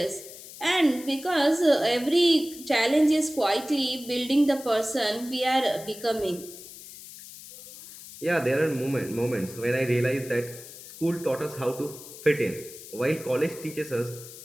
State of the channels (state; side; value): noise; left; hiss, 15 dB below the sound